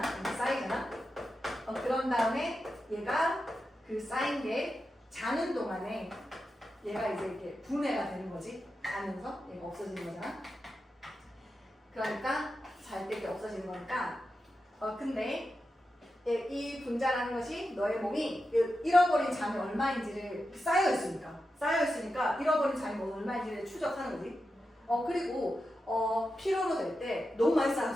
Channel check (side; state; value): both; normal; correlation 0.90